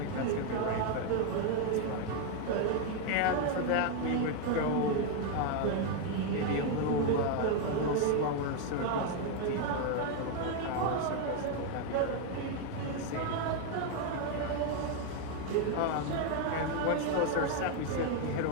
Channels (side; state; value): both; different; correlation 0.01